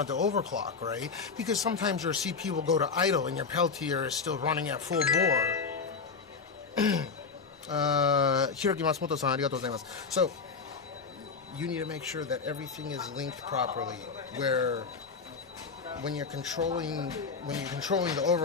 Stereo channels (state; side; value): quieter; right; 5.1 dB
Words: to overclock, right? Because sometimes your CPU will go to idle and your Peltier is still running at full bore. Hiroki Matsumoto-san, arigatou gozaimasu. So, you need to make sure that everything is linked properly, where when you're controlling the